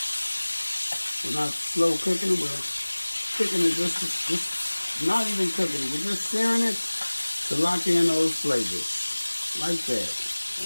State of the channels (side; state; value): both; inverted; correlation -1.00